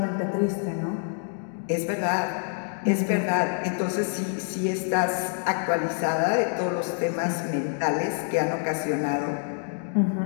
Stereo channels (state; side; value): silent; right; 60 dB below the other